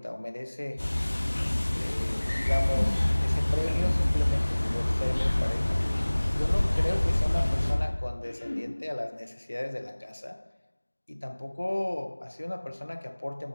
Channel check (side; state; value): both; inverted; correlation -1.00